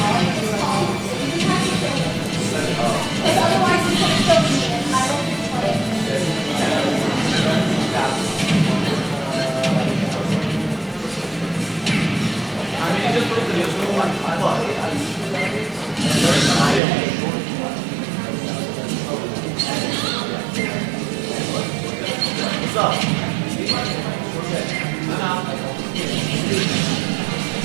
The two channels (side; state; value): left; drops out; at 16.8 s